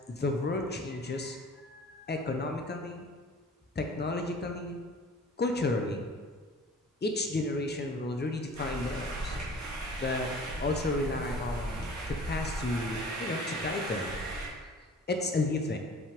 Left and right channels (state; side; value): normal; both; correlation 0.46